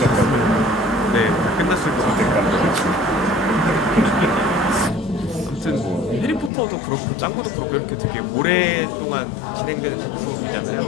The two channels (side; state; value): right; drops out; at 6.5 s